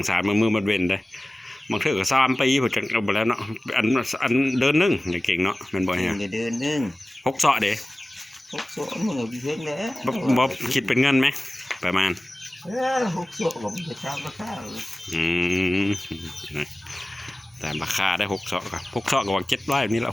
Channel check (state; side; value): normal; both; correlation 0.97